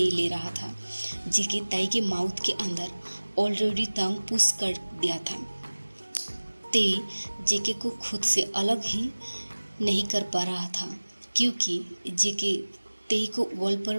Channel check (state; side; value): inverted; both; correlation -1.00